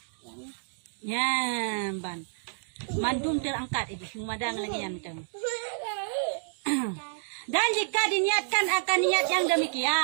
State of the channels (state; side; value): silent; left; digital silence